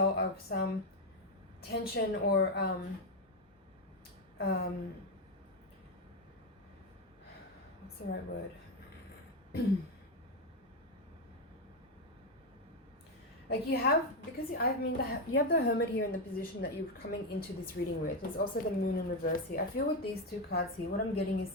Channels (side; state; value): both; normal; correlation 0.08